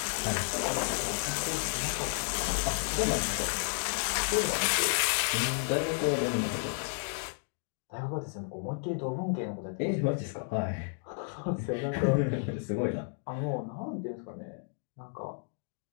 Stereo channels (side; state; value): right; silent; digital silence